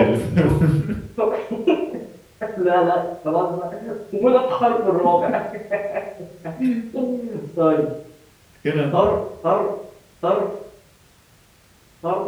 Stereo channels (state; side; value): identical; both; correlation 1.00